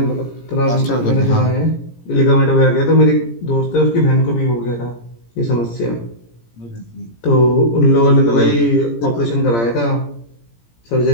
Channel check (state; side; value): late; right; 17 ms